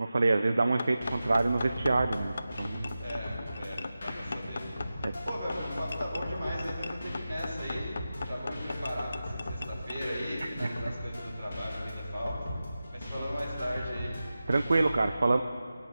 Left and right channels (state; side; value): inverted; both; correlation -0.94